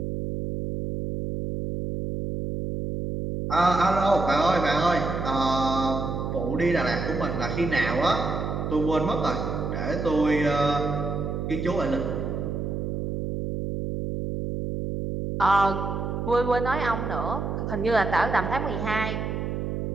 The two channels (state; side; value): noise; right; hum, 3 dB below the sound